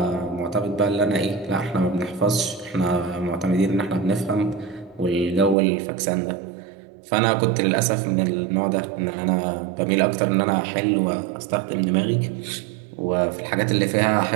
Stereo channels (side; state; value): left; drops out; at 5.6 s